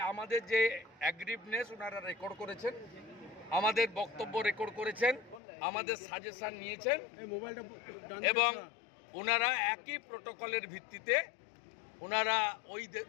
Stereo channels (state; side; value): drops out; right; at 5.4 s